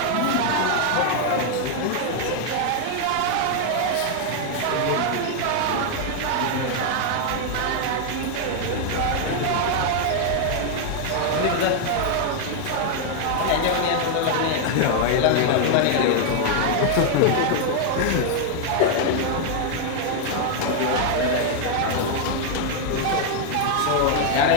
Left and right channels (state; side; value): different; both; correlation 0.00